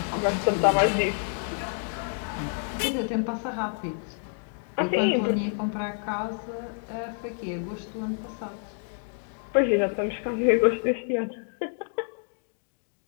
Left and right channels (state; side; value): silent; right; 56 dB below the other